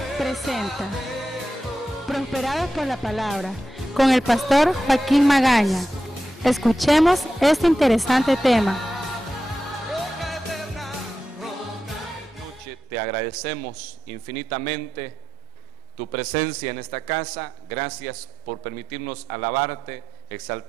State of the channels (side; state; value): both; normal; correlation 0.89